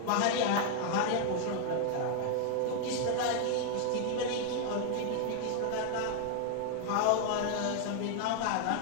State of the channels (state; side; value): different; both; correlation 0.00